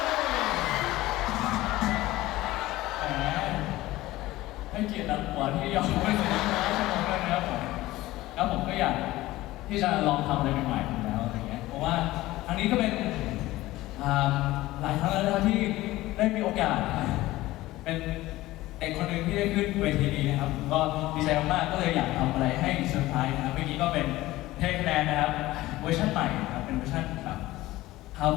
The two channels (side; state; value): right; quieter; 17.4 dB